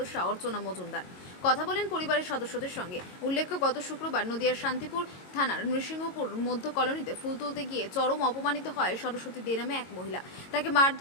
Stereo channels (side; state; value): right; late; 22 ms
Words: অর্চনা মজুমদার। কথা বলেন পরিবারের সদস্যদের সঙ্গে। উল্লেখ্য, গত শুক্রবার নদিয়ার শান্তিপুর থানার নৃসিংহপুর মধ্য কলোনিতে ফুল তুলতে গিয়ে চরম অপমানিত হয় সরস্বতী দে নামে এক মহিলা। তাকে